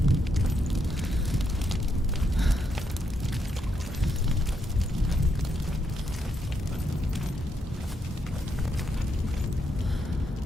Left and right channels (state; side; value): normal; both; correlation 0.79